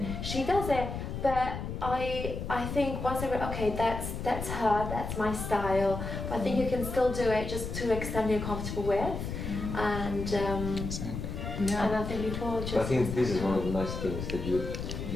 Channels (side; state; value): left; noise; rumble, 5 dB below the sound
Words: she does it, but I think once I read, okay, that's her, that's my style, but I think you can still do it just to extent you're comfortable with, and Exactly. and I think people just. I think this is one of the nice things that you